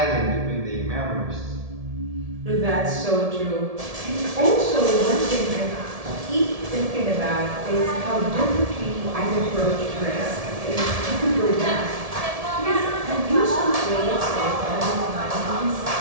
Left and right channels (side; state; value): left; late; 1.7 ms